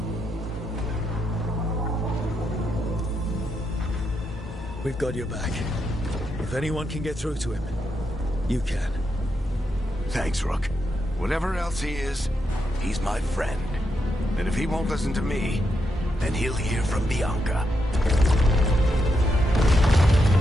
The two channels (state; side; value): normal; both; correlation 0.82